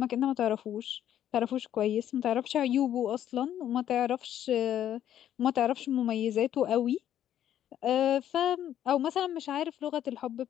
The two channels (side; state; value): right; quieter; 10.9 dB